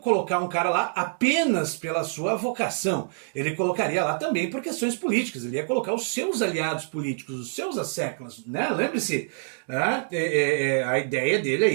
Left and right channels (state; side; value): silent; left; digital silence